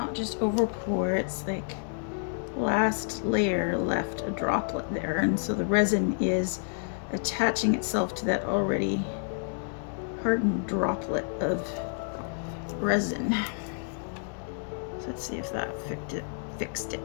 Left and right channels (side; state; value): right; silent; digital silence